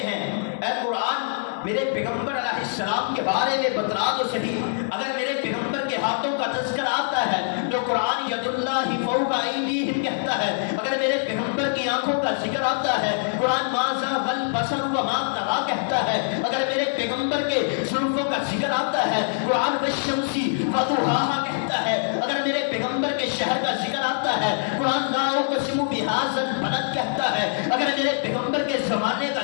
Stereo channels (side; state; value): right; silent; digital silence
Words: ہیں، اے قرآن میرے پیغمبر علیہ السلام کے بارے میں بتلا تو صحیح، اگر میرے پیغمبر کے ہاتھوں کا تذکر آتا ہے تو قرآن ید اللہ فوق ایدیہم کہتا ہے، اگر میرے پیغمبر کی آنکھوں کا ذکر آتا ہے قرآن ما زاغ البصر وما طغى کہتا ہے، اگر میرے پیغمبر کے زلفوں کا ذکر آتا ہے قرآن والشمس وضحاها کہتا ہے، اگر میرے پیغمبر کے شہر کا ذکر آتا ہے قرآن لا اقسم بهذا البلد کہتا ہے، اگر میرے پیغمبر کے زمانے